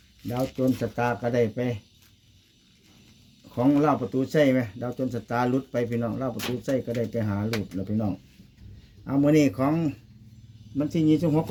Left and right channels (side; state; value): both; identical; correlation 1.00